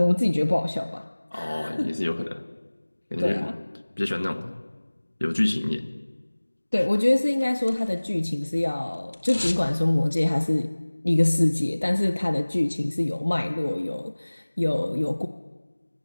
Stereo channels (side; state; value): both; inverted; correlation -1.00